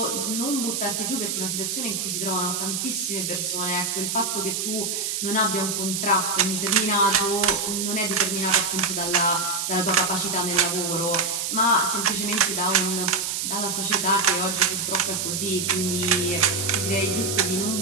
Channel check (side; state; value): right; noise; hiss, 1 dB below the sound